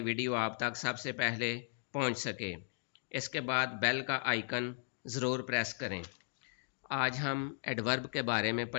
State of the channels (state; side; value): silent; right; digital silence